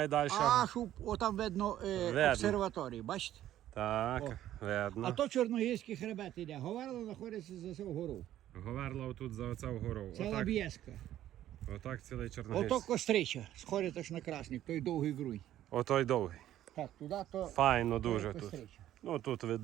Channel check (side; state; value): left; quieter; 12.6 dB